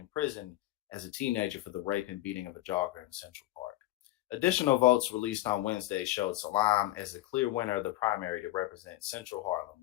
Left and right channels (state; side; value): quieter; right; 16.0 dB